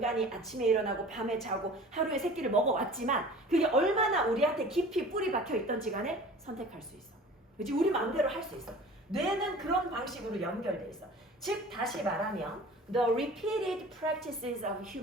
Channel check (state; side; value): normal; both; correlation 0.43